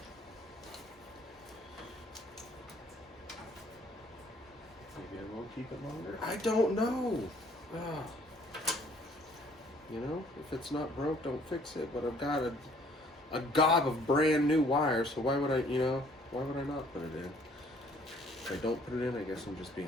Maybe I won't keep it longer. I don't know. You know, if it's not broke, don't fix it. But I've got a gob of brand new wires, so why would I, why would I not put it in? If I don't put it in, I guess I'm just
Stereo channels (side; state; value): both; normal; correlation 0.59